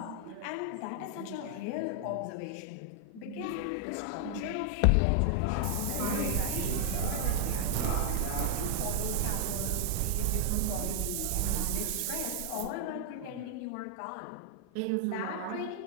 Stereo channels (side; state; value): both; different; correlation 0.00